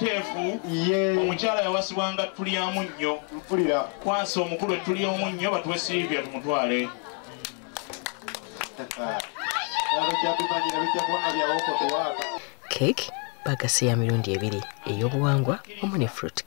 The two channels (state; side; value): quieter; right; 36.6 dB